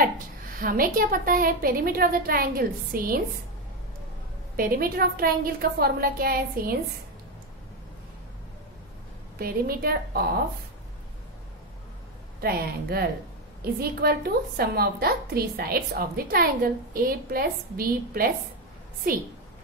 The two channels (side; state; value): both; normal; correlation 0.10